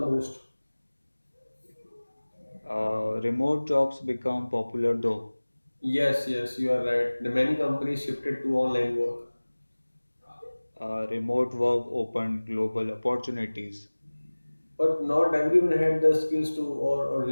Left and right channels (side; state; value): both; inverted; correlation -1.00